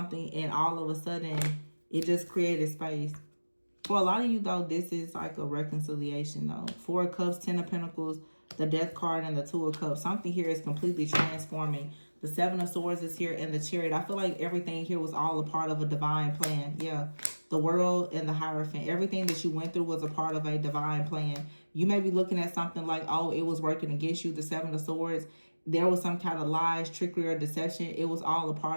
and all of a sudden, it just created space. For a lot of you, though, this is like a reconciliation, though. 4 of Cups, 10 of Pentacles, the Death card, and the 2 of Cups. Something here is completely transforming. The 7 of Swords is here, and the Chariot. I feel like everything here was all a part of a divine plan. Yeah, the World and the Hierophant. Everything that you went through was a part of a divine plan. You may be looking at something like, oh, it was working against you, the 7 of Swords. There was some kind of lies, trickery, or deception. It was all a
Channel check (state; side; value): inverted; both; correlation -1.00